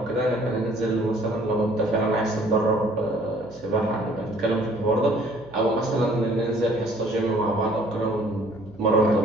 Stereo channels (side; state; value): right; noise; hum, 25 dB below the sound